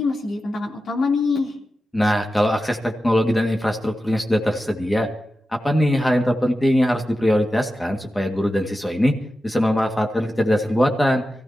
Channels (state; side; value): normal; both; correlation 0.92